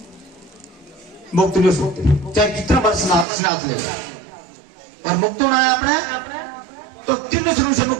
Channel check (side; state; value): left; drops out; at 3.2 s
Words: मुक्त नहीं हो सकते, चाहे कितना बार स्नात ले। और मुक्त होना है आपने तो 3 श्रेणी से